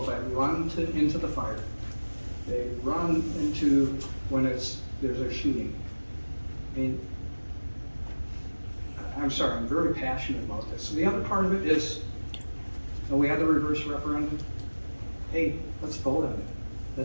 that run into the fire. They run into when there's a shooting. I mean, I'm sorry, I'm very passionate about this. So the other part of it is, we had the reverse referendum. Hey, let's vote on it.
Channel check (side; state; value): both; inverted; correlation -1.00